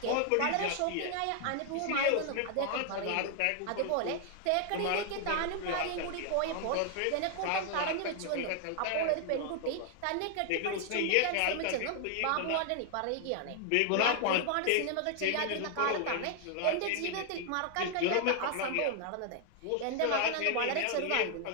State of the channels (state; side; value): different; both; correlation 0.00